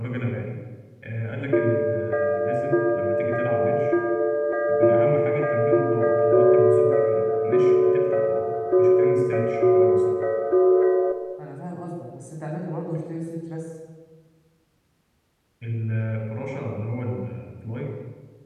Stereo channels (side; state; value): both; identical; correlation 1.00